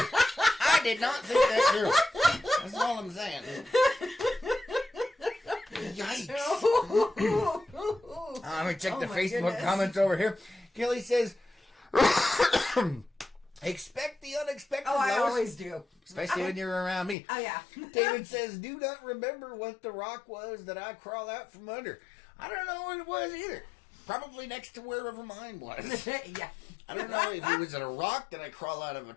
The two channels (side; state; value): right; drops out; at 17.2 s